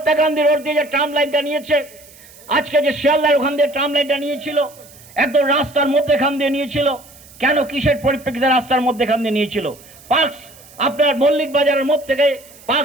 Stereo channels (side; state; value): right; noise; hiss, 23 dB below the sound